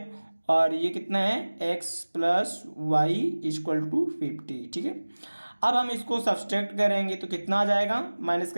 और ये कितना है X plus Y equal to 50। ठीक है, अब हम इसको सब्सट्रैक्ट करेंगे तो कितना आ जाएगा, माइनस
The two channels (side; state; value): both; inverted; correlation -1.00